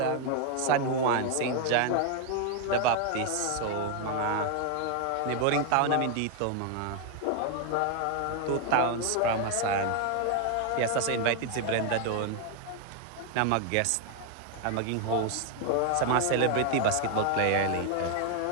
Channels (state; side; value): different; both; correlation 0.01